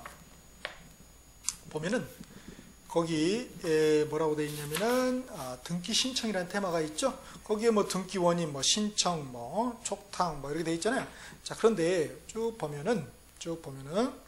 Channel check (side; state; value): both; identical; correlation 1.00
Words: 보면은, 거기 뭐라고 되어 있냐면은, 등기 신청이라는 테마가 있죠. 거기에 뭐 등기 원인, 뭐 신청, 뭐 촉탁, 뭐 이렇게 되어 있잖아요. 자, 그런데 쭉 보면은,